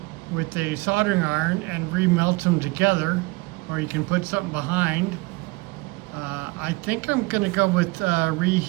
with a soldering iron and remelt them together, or you can put something behind. I think I'm gonna go with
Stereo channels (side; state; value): left; quieter; 24.5 dB